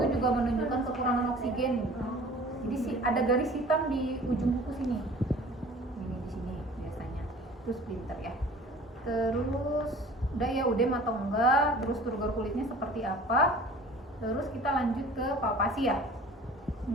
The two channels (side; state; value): both; normal; correlation 0.46